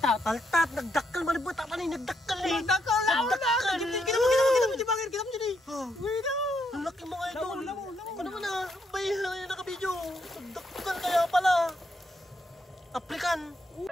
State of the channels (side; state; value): both; normal; correlation 0.77